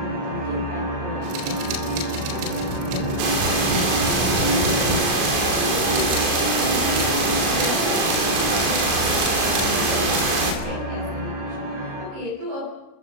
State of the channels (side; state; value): left; late; 37 ms